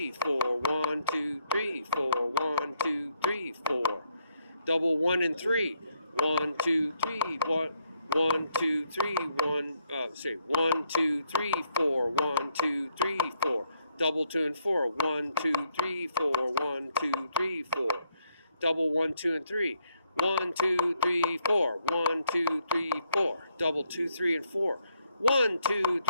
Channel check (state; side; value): inverted; both; correlation -0.73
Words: 4, 1, 2, 3, 4, 1, 2, 3, 4. Double 1 and 3. 1, 2, 3, 1, 2, 3, 1, 2, 3, 4, 1, 2, 3, 4. Double 2 and 4. 1, 2, 3, 4, 1, 2, 3, 4. Double 1, 2, and 3. 1, 2, 3, 4. 1, 2, 3, 4. Double 2, 3, and 4. 1, 2,